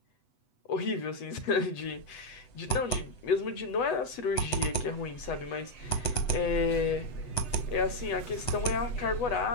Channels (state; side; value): late; right; 8.1 ms